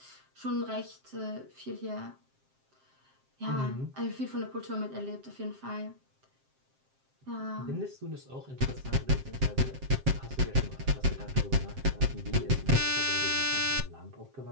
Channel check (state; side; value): late; left; 7.6 ms